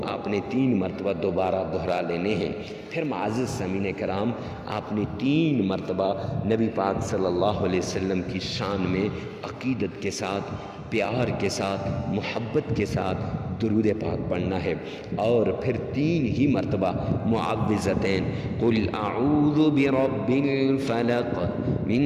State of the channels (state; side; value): identical; both; correlation 1.00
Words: آپ نے 3 مرتبہ دوبارہ دہرا لینے ہیں۔ پھر معزز سامعین کرام، آپ نے 3 مرتبہ نبی پاک صلی اللہ علیہ وسلم کی شان میں عقیدت کے ساتھ، پیار کے ساتھ، محبت کے ساتھ درود پاک پڑھنا ہے، اور پھر 3 ہی مرتبہ معوذتین، قل اعوذ برب الفلق